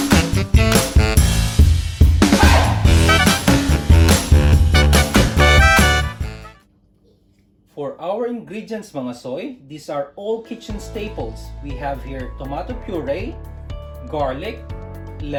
For our ingredients mga soy, these are all kitchen staples. We have here tomato puree, garlic,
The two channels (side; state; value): both; identical; correlation 1.00